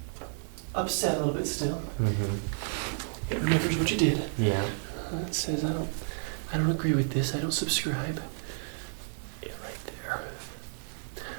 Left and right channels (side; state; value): left; silent; 57 dB below the other